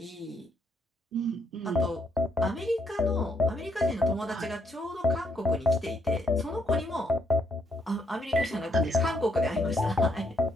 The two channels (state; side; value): normal; both; correlation 0.74